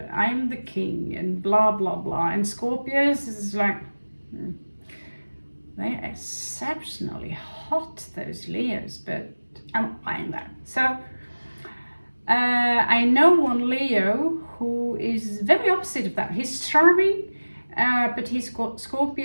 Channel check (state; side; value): inverted; both; correlation -1.00